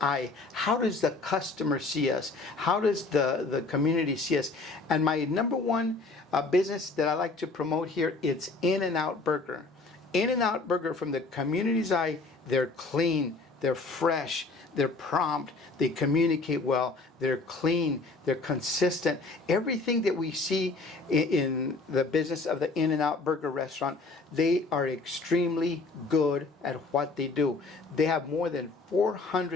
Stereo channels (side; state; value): right; quieter; 3.6 dB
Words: How does the customer see us? How does the community see us? And my number one business that I like to promote here, it's In-N-Out Burger. In-N-Out Burger, from the community's eye, they're clean, they're fresh, they're prompt, they communicate well, they're clean, they're consistent. Everything that we see in the business of the In-N-Out Burger restaurant, they are extremely good at what they do. They have more than